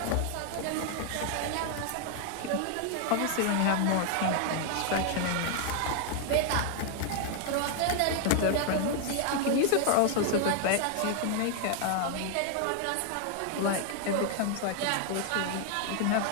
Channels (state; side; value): different; both; correlation 0.00